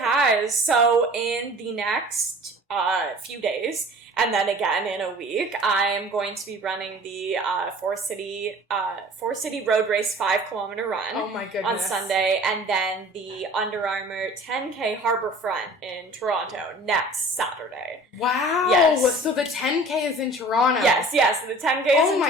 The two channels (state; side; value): normal; both; correlation 0.45